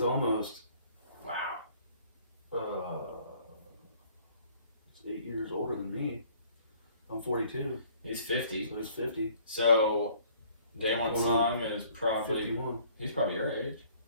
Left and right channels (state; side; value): inverted; both; correlation -0.58